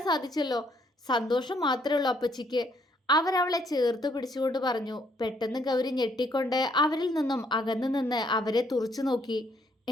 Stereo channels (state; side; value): normal; both; correlation 0.69